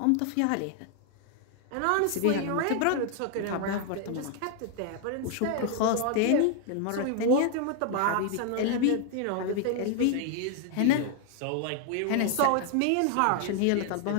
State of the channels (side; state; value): both; different; correlation 0.00